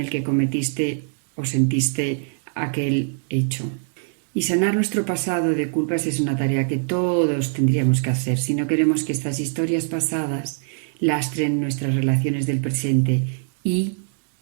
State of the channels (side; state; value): left; silent; digital silence